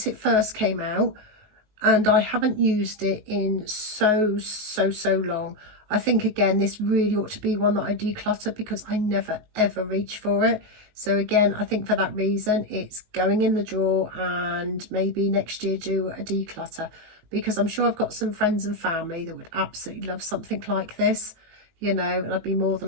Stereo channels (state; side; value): late; left; 19 ms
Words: it first came out, and I haven't used it in so long. I think again this really ought to be one that I declutter, because I never ever reach for it. So again, I think for that reason it's going in the drawer, and maybe next year do a declutter, because I'm sure I've got some friends and family that would absolutely love something like this, you know, and I'd be more